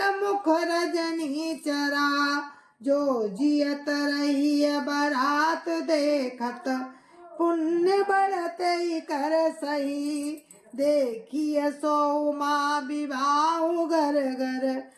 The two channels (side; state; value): both; identical; correlation 1.00